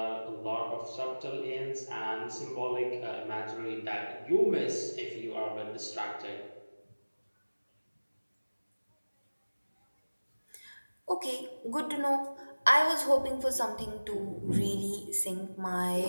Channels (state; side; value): inverted; both; correlation -1.00